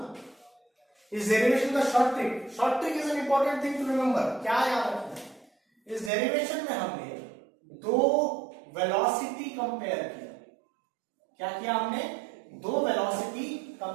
इस डेरिवेशन का short trick is an important thing to remember. क्या याद रखना है, इस डेरिवेशन में हमने दो वेलोसिटी कंपेयर किया। क्या किया हमने, दो वेलोसिटी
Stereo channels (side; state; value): left; drops out; at 6.1 s